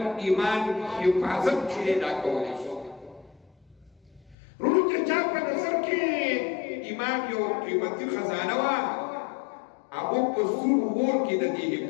ایمان حفاظت چې دا کولی شي ورونو چې چا په نظر کې ایمان یو قیمتي خزانه وه هغو په سور اور کې د دې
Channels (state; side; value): drops out; right; at 4.4 s